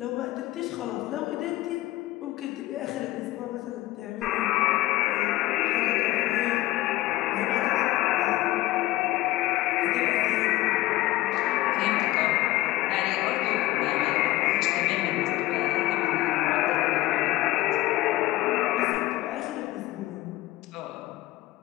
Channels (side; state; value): right; quieter; 17.1 dB